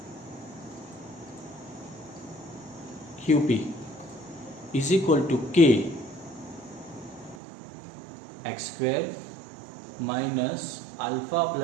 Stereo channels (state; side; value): drops out; left; at 7.4 s